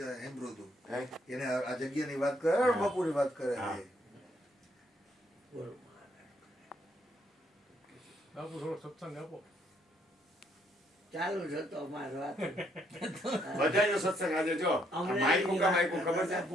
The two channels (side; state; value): both; normal; correlation 0.71